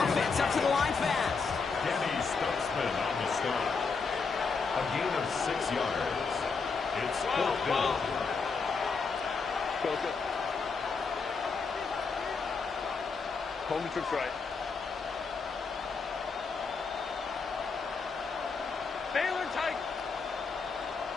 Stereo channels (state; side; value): quieter; right; 4.9 dB